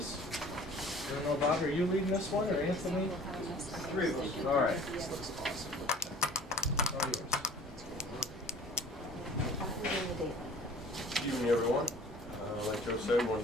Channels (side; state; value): both; normal; correlation 0.48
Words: I don't know, Bob, are you leading this one, or Anthony? Three of us. All right. This looks awesome. All yours. Good evening, everyone. Like Joe said, we